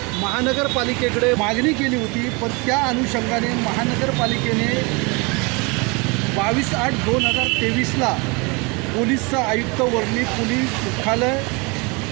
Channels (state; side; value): quieter; left; 28.8 dB